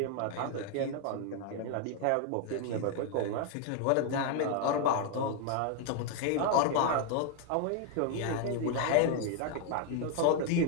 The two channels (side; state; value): both; different; correlation 0.00